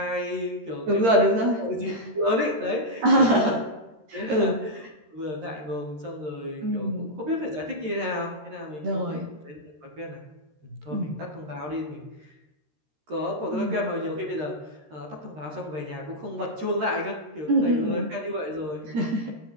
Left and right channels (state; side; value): late; left; 13 ms